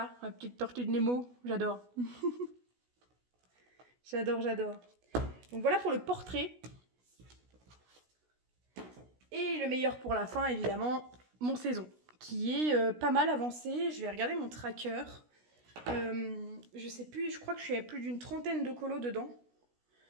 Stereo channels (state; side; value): late; left; 16 ms